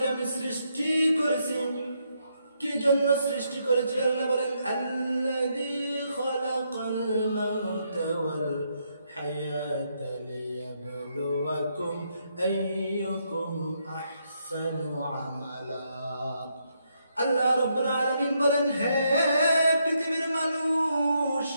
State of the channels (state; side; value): inverted; both; correlation -0.77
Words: আমি সৃষ্টি করেছি। কি জন্য সৃষ্টি করেছি? আল্লাহ বলেন, আল্লাযী খালাকাল মাউতা ওয়াল হায়াতা লিয়াবলুয়াকুম আইয়ুকুম আহসানু আমালা। আল্লাহ রাব্বুল আলামিন বলেন, হে পৃথিবীর মানুষ,